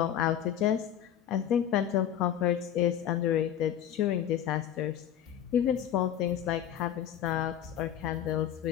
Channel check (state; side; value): quieter; right; 10.2 dB